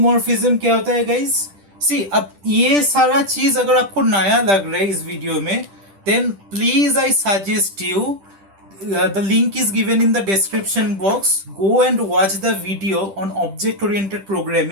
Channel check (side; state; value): left; late; 10 ms